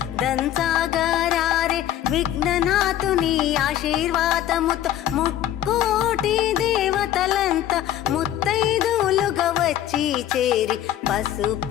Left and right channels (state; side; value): quieter; right; 12.0 dB